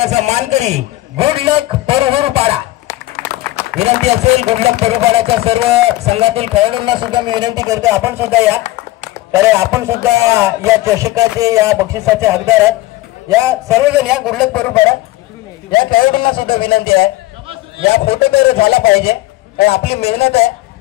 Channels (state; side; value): quieter; right; 17.6 dB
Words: मानकरी गुडलक परुहरपाडा. विनंती असेल गुडलक परुहरपाड्याच्या सर्व संघातील खेळाडूंना सुद्धा मी विनंती करतो आपण सुद्धा या. तर आपण सुद्धा या चषकाचे, या बक्षिसाचे हकदार आहेत. या सर्वजण या गुडलक परुहरपाडा या खेळाडूंना सुद्धा विनंती आहे या फोटो तर झाला पाहिजे, कारण आपली मेहनत आहे.